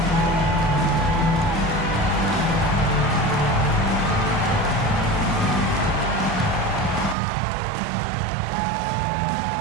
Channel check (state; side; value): drops out; left; at 7.2 s